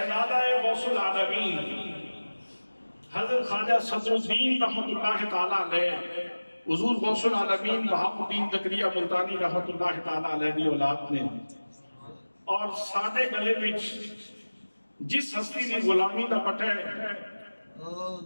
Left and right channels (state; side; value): inverted; both; correlation -1.00